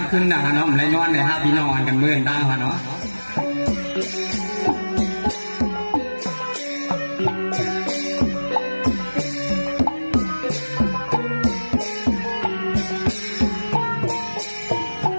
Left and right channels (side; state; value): both; inverted; correlation -1.00